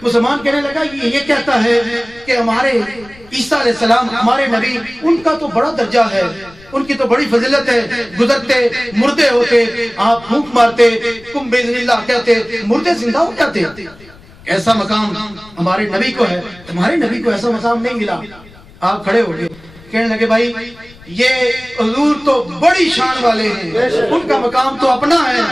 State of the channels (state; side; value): noise; left; rumble, 23 dB below the sound